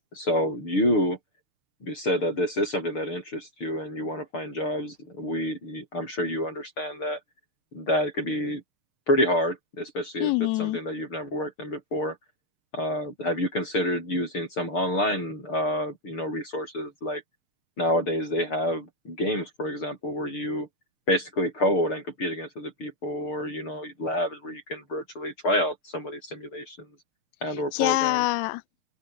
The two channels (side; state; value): right; late; 6.7 ms